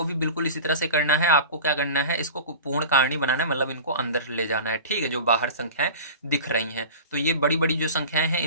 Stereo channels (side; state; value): both; inverted; correlation -0.36